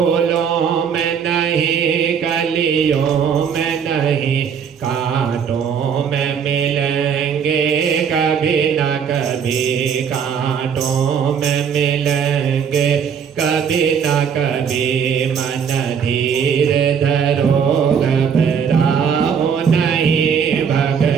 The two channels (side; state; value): left; quieter; 7.2 dB